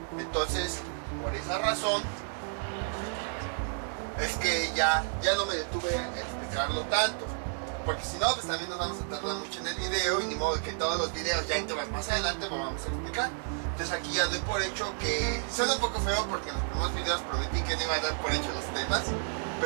Entonces, por esa razón es que ya no me detuve a explicarlo tanto, porque si no, pues también nos vamos a tardar mucho en el video, y ni modo que todos los videos ya en temas más adelante lo vamos a explicar. Entonces aquí ya doy por hecho que suena un poco feo, porque en los primeros videos prometí que no iba a dar por hecho los temas,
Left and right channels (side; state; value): left; silent; 57 dB below the other